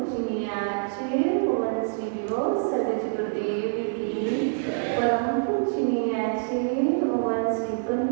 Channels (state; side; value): silent; left; digital silence